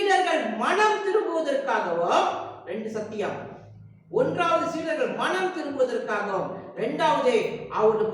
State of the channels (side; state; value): both; identical; correlation 1.00